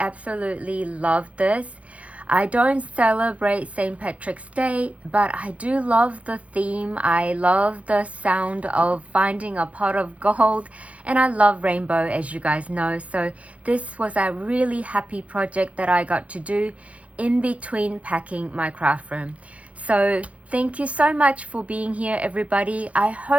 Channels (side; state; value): left; late; 0.065 ms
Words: love this. I don't celebrate St. Patrick's Day, but I do love the theme. I love the sound of finding a pot of gold, and I love rainbow, as you guys know. So this was a really happy project that I got to do in between packing my craft room. So thank you so much for being here, everybody. I